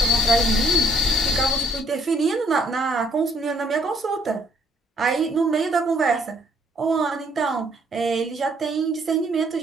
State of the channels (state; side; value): normal; both; correlation 0.65